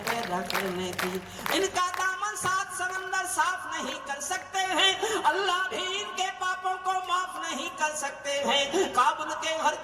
पैदा करने की। इनका दामन सात समंदर साफ नहीं कर सकते हैं, अल्लाह भी इनके पापों को माफ नहीं कर सकते हैं। काबुल के हर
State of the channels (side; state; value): both; identical; correlation 1.00